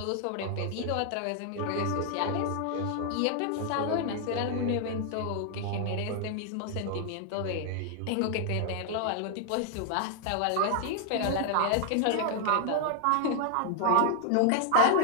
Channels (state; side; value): different; both; correlation 0.00